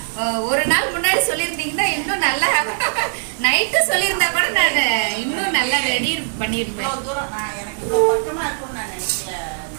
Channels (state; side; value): silent; left; digital silence